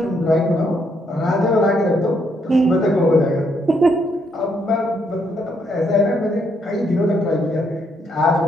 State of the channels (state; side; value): normal; both; correlation 0.74